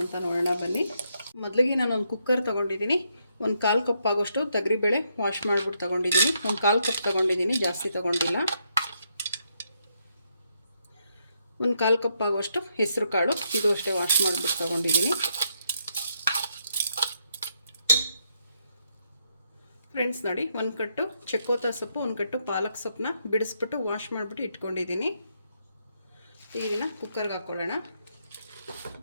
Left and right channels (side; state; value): both; inverted; correlation -0.77